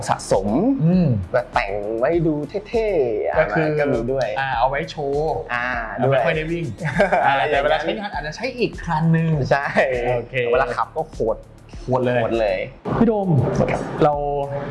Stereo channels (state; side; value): identical; both; correlation 1.00